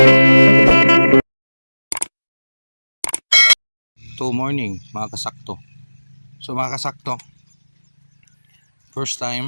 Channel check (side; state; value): both; inverted; correlation -1.00